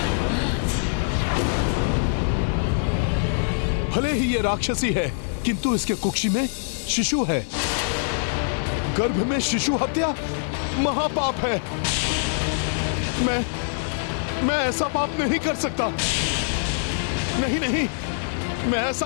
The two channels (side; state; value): right; silent; digital silence